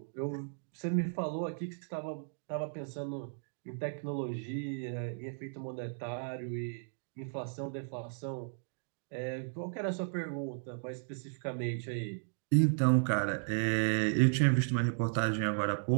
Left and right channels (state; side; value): silent; left; digital silence